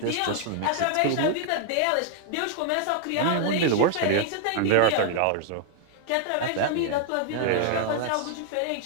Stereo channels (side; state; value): both; different; correlation 0.00